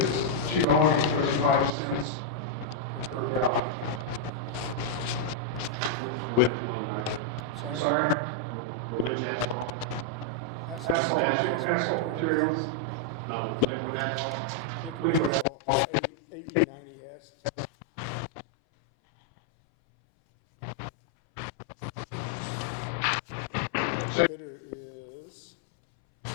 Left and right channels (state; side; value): drops out; right; at 15.5 s